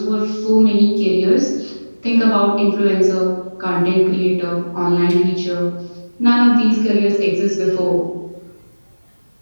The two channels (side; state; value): both; inverted; correlation -1.00